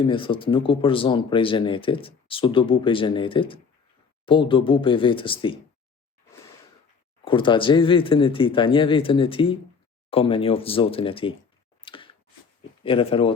thot nuk u përzon prej xhenetit, s'u dobu prej xhenetit, po u dobu prej vetës tij. Kur ta gjej veten e tij, ta njeh veten e tij, ka me njoft Zotin e tij. I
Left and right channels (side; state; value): right; quieter; 5.4 dB